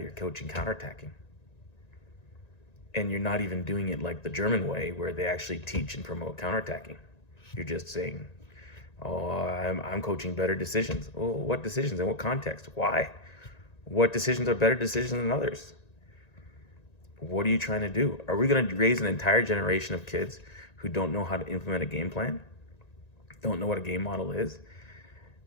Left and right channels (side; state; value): right; late; 1.9 ms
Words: coaching counterattacking. And you're not even doing it like the German way, where they actually teach and promote counterattacking. You're just saying, oh, I'm coaching better decisions. Oh, what decisions? In what context? Why? What decisions are better decisions than others? What are you trying to do? Are we going to raise an entire generation of kids who don't know how to implement a game plan? Don't know what a game model is?